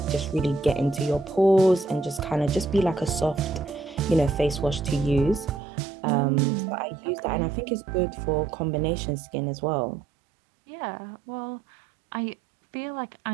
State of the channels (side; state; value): left; drops out; at 5.6 s